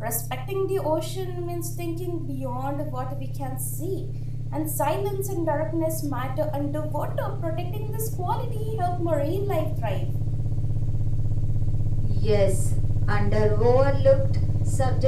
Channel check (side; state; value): both; identical; correlation 1.00